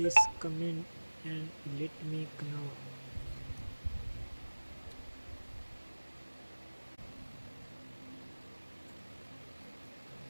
comment and let me know.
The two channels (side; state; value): both; inverted; correlation -1.00